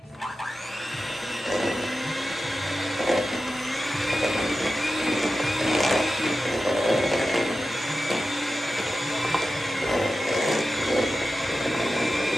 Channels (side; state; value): both; normal; correlation 0.93